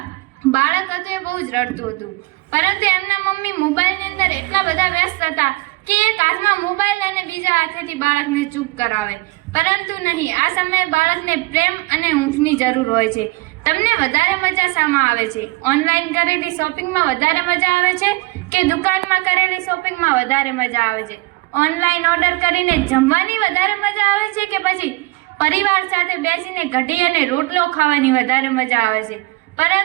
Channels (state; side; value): quieter; left; 23.0 dB